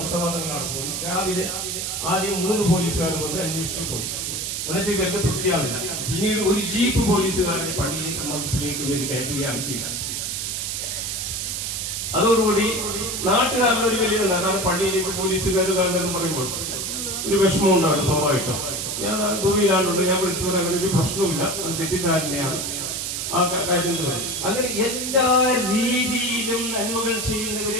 തങ്ങളാണ് പോയി. രാവിലെ ആദ്യം 3 പോലീസുകാർ വന്ന് അന്വേഷിച്ചു പോയി. എന്നിട്ട് ഇവർക്ക് തൃപ്തിയാവില്ല. പിന്നീട് ഒരു ജീപ്പ് പോലീസുകാരനെ പള്ളിയിലേക്ക് മദ്രസയിലേക്ക് ഇവർ കയറ്റുകയാണ് ചെയ്യുന്നത്. അതോടുകൂടി നാട്ടുകാരുടെ ഒരു വലിയ കാരണം പള്ളിയിലേക്ക് പോലീസുകാർ കാരണം പറയുമ്പോൾ ഒരു വിഷമം ഉണ്ടാകും സ്വാഭാവികം. ഞാൻ ദുബൈയിലാണ്ടുണ്ട്, ഞാൻ വിളിച്ചു പറയാൻ അങ്ങനെ ഒരു പ്രശ്നവുമില്ല, അത് തെറ്റിദ്ധാരണയാണ് ആ കാര്യം. അങ്ങനെ എല്ലാ രീതിയിലും നന്മകൾ ചെയ്യുന്നവരെ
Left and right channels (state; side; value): noise; right; hiss, 3 dB below the sound